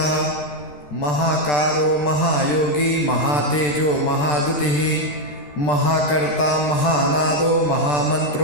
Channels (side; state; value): right; late; 13 ms